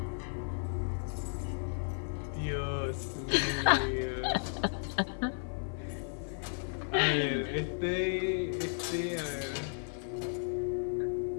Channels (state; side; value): silent; right; 55 dB below the other